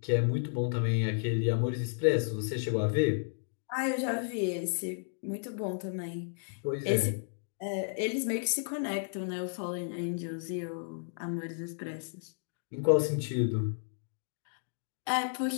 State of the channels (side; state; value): right; silent; digital silence